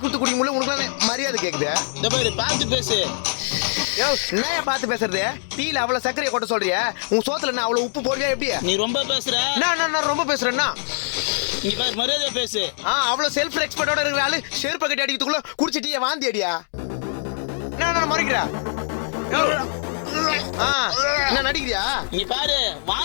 கொடுத்து குடிக்க முடியல, உனக்கு மரியாதை கேக்குது. இந்த பாரு, பார்த்து பேசு. என்ன பார்த்து பேசுறது? டீல அவ்வளவு சர்க்கரையை கொட்ட சொல்றியா? உன் சோத்துல என்ன அவ்வளவு உப்பு போடுறியா? எப்படி நீ ரொம்ப பேசுற? நான் ரொம்ப பேசுறேன்னா நீ பாரு, மரியாதை பேசு. அவ்வளவு செல்ஃப் ரெஸ்பெக்டோட இருக்கிற ஆளு செருப்பு கட்டி அடிக்கிறதுக்குள்ள குடிச்சு டீயை வாந்தி அடியா? நான் மறைக்கிறா? என்ன நடிக்கிறியா? நீ பாரு,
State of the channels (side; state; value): right; silent; digital silence